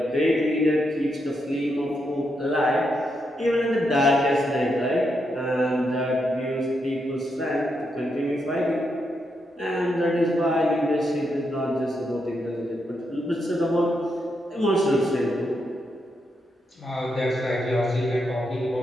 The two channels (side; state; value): both; normal; correlation 0.82